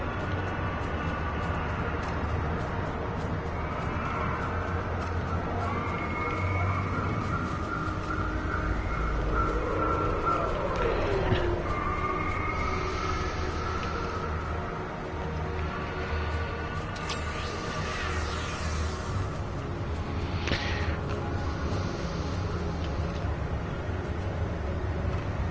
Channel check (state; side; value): identical; both; correlation 1.00